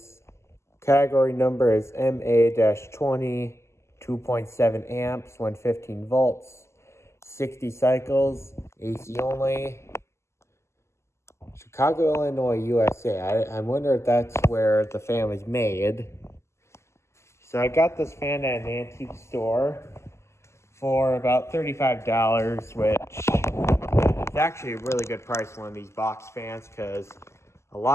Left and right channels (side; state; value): right; late; 0.13 ms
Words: category number is MA-20, 2.7 amps, 115 volts, 60 cycles, AC only. Chicago, Illinois, USA. I wonder if that's where the fan was made. So I got this fan at an antique store for about $35, which is actually a really good price for one of these box fans, because a